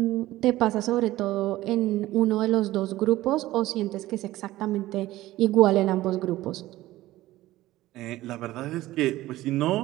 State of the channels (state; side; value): quieter; left; 16.3 dB